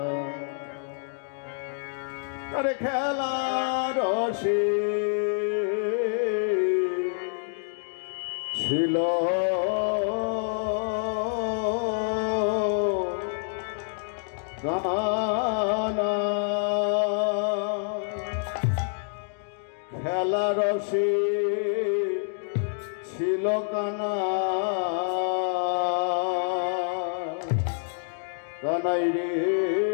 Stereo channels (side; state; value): right; silent; digital silence